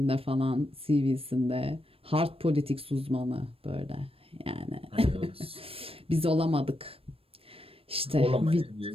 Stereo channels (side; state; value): left; late; 0.28 ms